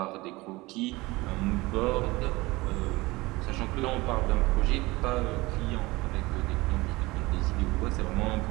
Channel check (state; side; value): quieter; left; 21.6 dB